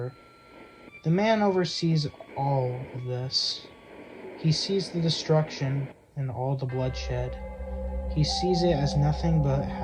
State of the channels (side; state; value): both; identical; correlation 1.00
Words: The man oversees all of this. He sees the destruction and all the bloodshed. He sees it as nothing but